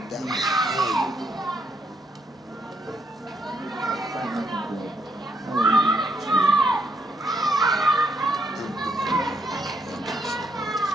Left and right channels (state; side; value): normal; both; correlation 0.75